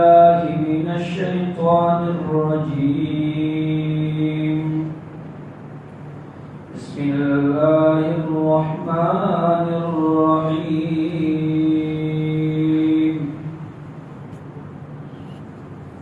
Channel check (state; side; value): identical; both; correlation 1.00